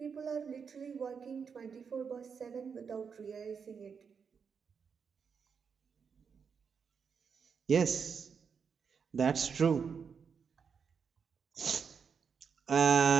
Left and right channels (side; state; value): left; quieter; 6.3 dB